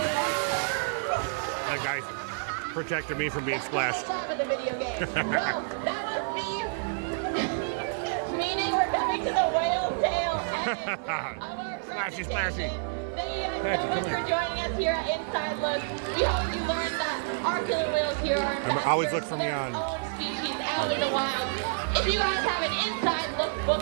That guy's protected me from being splashed. For the video game. Well, that must be meaning we're coming to the whale tail end of our Splashy, splashy. Thank you guys so much for joining us here at Inside Look. We hope you learned that our killer whales here are Remember, always look for me on. own species out in the wild. If you guys have an Inside Look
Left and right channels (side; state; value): left; silent; 59 dB below the other